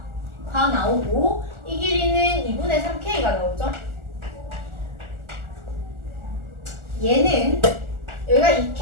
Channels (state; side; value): late; left; 1.4 ms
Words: 다 나오고 이 길이는 2분의 3K가 나오죠. 얘는 여기가